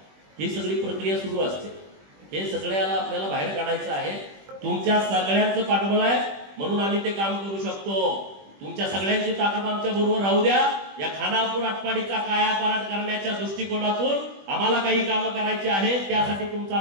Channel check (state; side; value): late; left; 20 ms